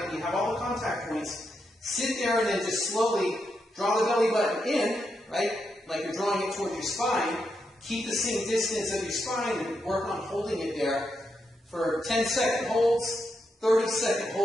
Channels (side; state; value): both; normal; correlation 0.83